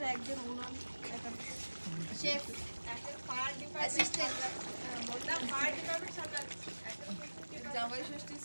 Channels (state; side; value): inverted; both; correlation -1.00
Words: একজন উনান, শেফ, একজন ফায়ার ডিপার্টমেন্ট, বললাম ফায়ার ডিপার্টমেন্ট সামলাচ্ছে, জামাই ষষ্ঠী